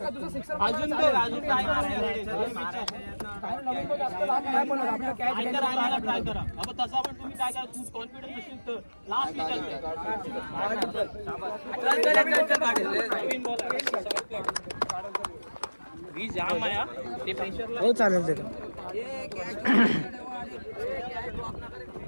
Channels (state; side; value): inverted; both; correlation -1.00